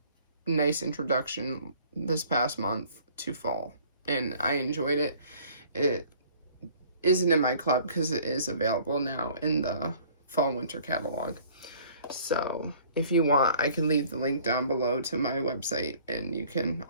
nice introduction this past month to fall, and I enjoyed it. It isn't in my club because it is available now in the fall winter catalog. So if you want, I can leave the link down below to my website, and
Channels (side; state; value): both; inverted; correlation -0.54